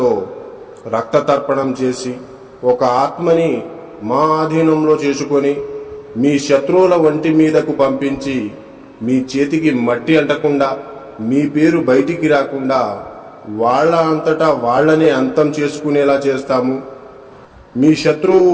రక్త తర్పణం చేసి ఒక ఆత్మని మా ఆధీనంలో చేసుకొని మీ శత్రువుల వంటి మీదకు పంపించి మీ చేతికి మట్టి అంటకుండా, మీ పేరు బయటికి రాకుండా వాళ్ళ అంతటా వాళ్ళనే అంతం చేసుకునేలా చేస్తాము. మీ శత్రువు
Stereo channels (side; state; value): both; identical; correlation 1.00